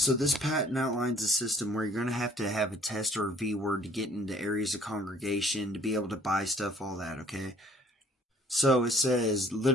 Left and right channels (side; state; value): both; normal; correlation 0.57